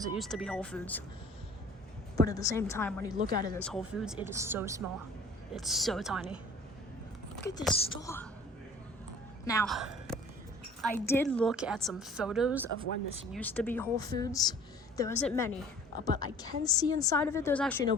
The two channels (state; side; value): normal; both; correlation 0.49